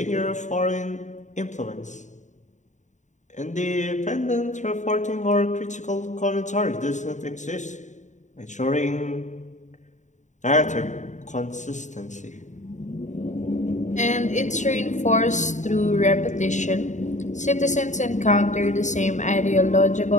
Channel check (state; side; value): late; right; 0.35 ms